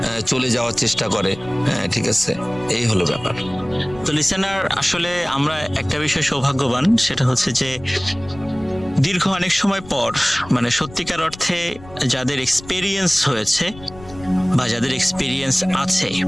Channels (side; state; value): left; noise; rumble, 19 dB below the sound